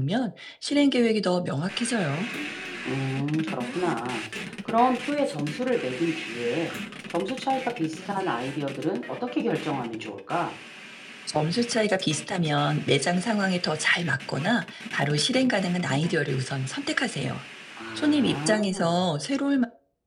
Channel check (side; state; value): both; identical; correlation 1.00